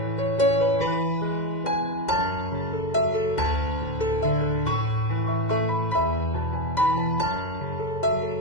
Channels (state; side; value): late; right; 2.0 ms